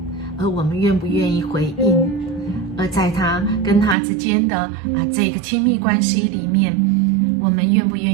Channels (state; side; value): drops out; left; at 4.0 s